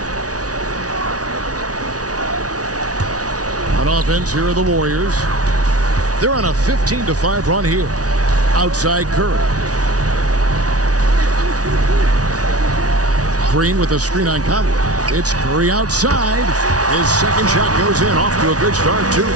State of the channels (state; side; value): late; left; 0.68 ms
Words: On offense, here are the Warriors. They're on a 15-5 run here. Outside Curry. Green with a screen on Conley. It's Curry outside. His second shot goes in. Off to a good start. 2